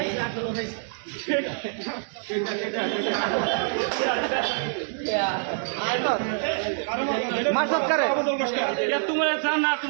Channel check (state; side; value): silent; left; digital silence